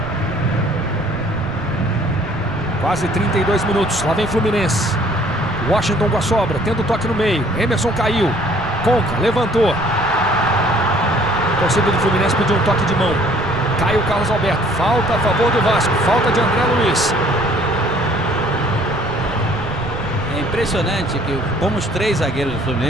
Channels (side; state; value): right; noise; rumble, 12 dB below the sound